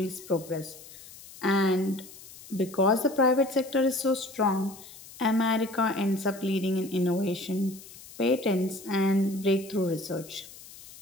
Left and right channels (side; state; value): left; noise; hiss, 18 dB below the sound